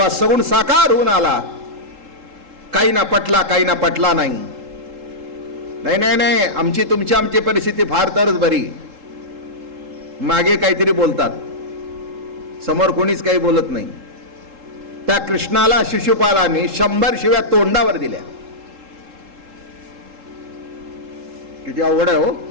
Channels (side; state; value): left; late; 3.7 ms